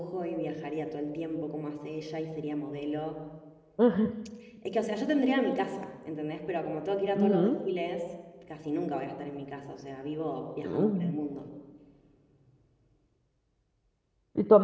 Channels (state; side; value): identical; both; correlation 1.00